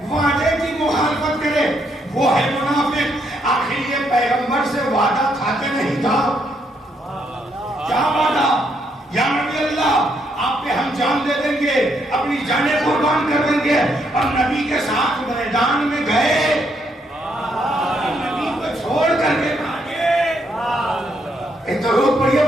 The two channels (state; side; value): normal; both; correlation 0.75